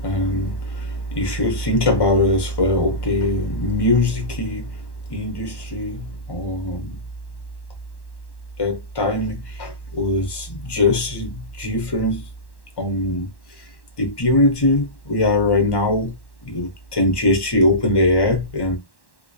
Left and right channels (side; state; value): right; late; 1.1 ms